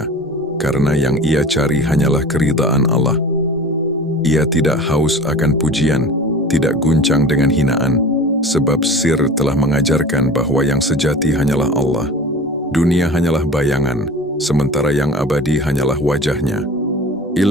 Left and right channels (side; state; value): both; normal; correlation 0.38